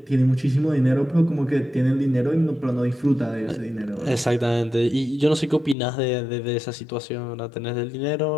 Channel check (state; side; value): drops out; right; at 5.8 s